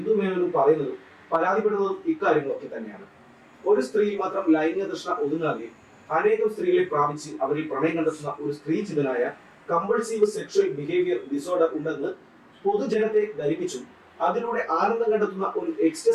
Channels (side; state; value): both; identical; correlation 1.00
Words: മേനോനും പറയുന്നതും പരാതിപ്പെടുന്നതും ഇക്കാര്യങ്ങളൊക്കെ തന്നെയാണ്. ഒരു സ്ത്രീ മാത്രം ലൈംഗിക തൃഷ്ണ ഒതുങ്ങാതെ അനേകം സ്ത്രീകളെ പ്രാപിച്ച് അവരിൽ പ്രണയം കണ്ടെത്തുന്ന ഒരു സ്ത്രീചിതനായ കമ്പൾസീവ് സെക്ഷൽ ബിഹേവിയർ ഡിസോർഡർ ഉണ്ടെന്ന് പൊതുജനത്തെ ധരിപ്പിച്ചു അതിലൂടെ ആനന്ദം കണ്ടെത്തുന്ന ഒരു